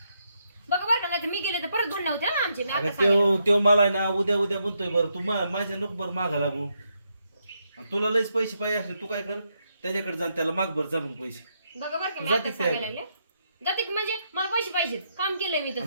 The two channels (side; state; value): both; inverted; correlation -0.79